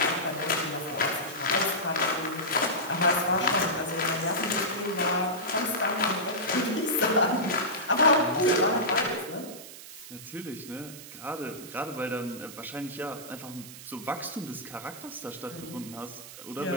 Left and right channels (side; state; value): right; noise; hiss, 14 dB below the sound